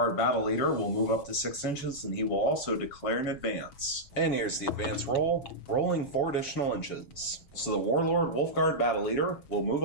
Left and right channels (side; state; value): right; late; 7.0 ms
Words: Battle Leader will move up to 6 inches, and he will also declare an advance. And here's the advance roll, rolling 4 additional inches. So the Warlord Wolfguard Battle Leader will move